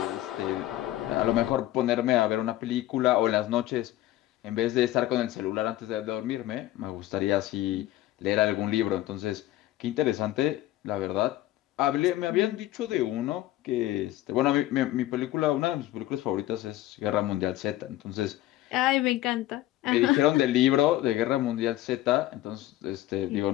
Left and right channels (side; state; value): right; quieter; 15.1 dB